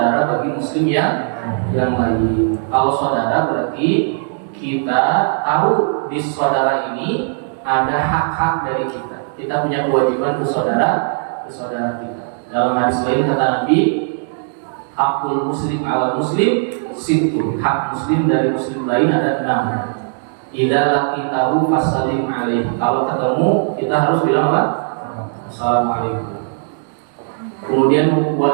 bagi muslim yang lain. Kalau saudara berarti kita tahu di saudara ini ada hak-hak dari kita. Kita punya kewajiban ke saudara kita. Dalam hadis lain kata Nabi, hakul muslim ala muslim sittun. Hak muslim dari muslim lain ada 6. Idza laqitahu fasallim alaih. Kalau ketemu kita harus bilang apa? Assalamualaikum. Kemudian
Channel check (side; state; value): left; silent; digital silence